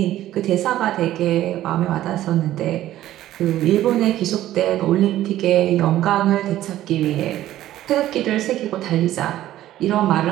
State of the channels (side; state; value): left; quieter; 13.7 dB